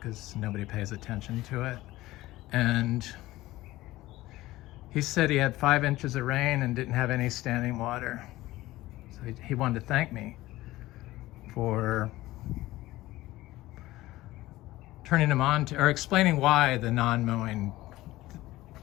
nobody pays attention to it. And he said he had 5 inches of rain and didn't have any standing water. So he wanted to thank me for turning him on to, or explaining why the non-mowing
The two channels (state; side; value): quieter; right; 17.3 dB